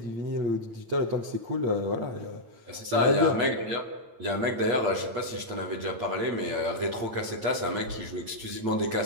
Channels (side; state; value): left; late; 8.8 ms